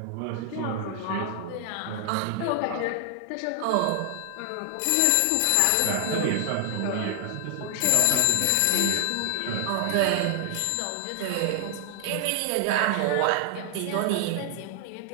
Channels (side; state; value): both; different; correlation 0.00